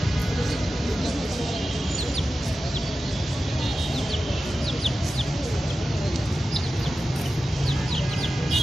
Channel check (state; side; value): normal; both; correlation 0.93